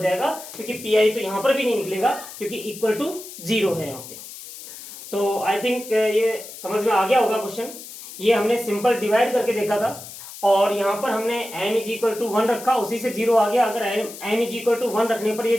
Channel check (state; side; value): noise; left; hiss, 14 dB below the sound